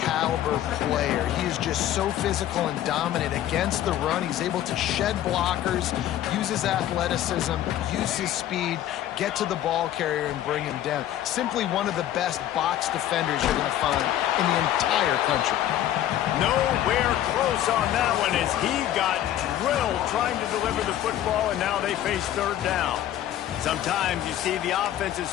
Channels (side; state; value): right; quieter; 12.2 dB